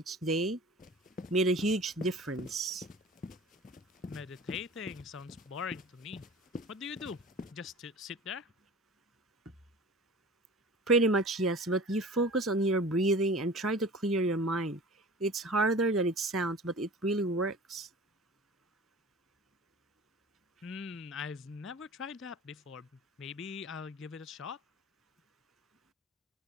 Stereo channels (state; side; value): normal; both; correlation 0.39